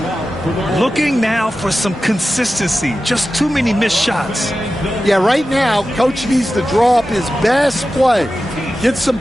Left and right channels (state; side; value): normal; both; correlation 0.93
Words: Looking now for some consistency. Just too many missed shots. Yeah, right now, Coach needs to draw up his best play, get some